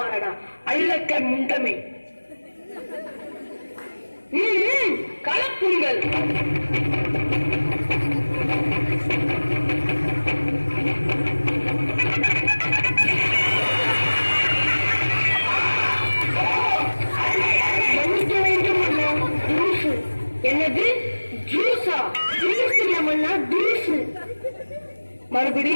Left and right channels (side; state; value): both; inverted; correlation -1.00